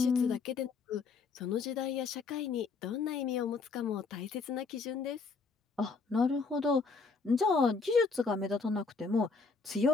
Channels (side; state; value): right; quieter; 4.6 dB